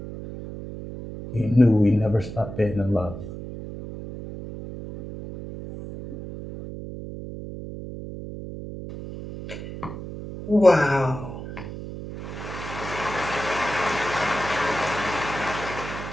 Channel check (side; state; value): right; noise; hum, 10 dB below the sound